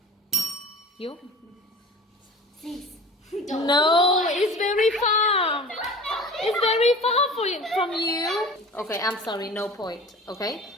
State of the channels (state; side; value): normal; both; correlation 0.38